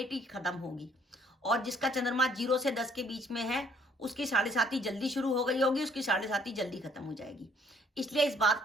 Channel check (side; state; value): both; normal; correlation 0.62